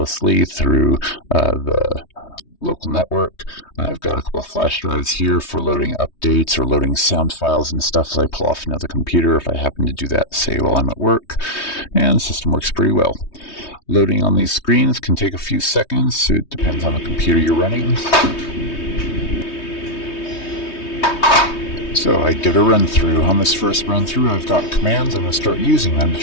through the local network. I've got a couple of flash drives here for loading updates or loading sound files and stuff as I pull off another computer if I happen to do that, say, while I'm at work. And the system works pretty well. Loading on these screens can take a few seconds, so it depends on the computer you're running. So I give it a run through. On this first run through, I've got commands. I'm going to start using them to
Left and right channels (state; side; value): late; right; 3.2 ms